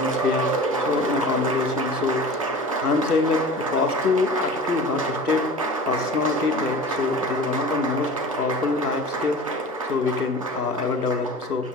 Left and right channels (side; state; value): both; normal; correlation 0.38